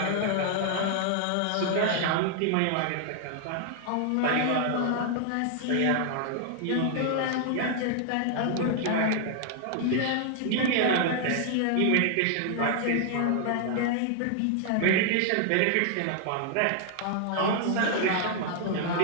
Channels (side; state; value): both; different; correlation 0.00